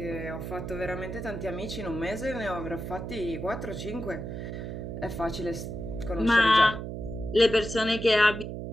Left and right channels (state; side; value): noise; right; hum, 6 dB below the sound